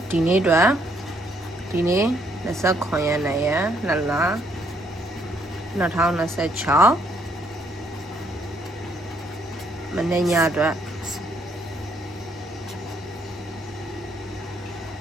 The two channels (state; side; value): normal; both; correlation 0.69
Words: ဒီနေ့အတွက်ဒီနေ့29ရက်နေ့ရက်2လ2026မနေ့ညအတွက်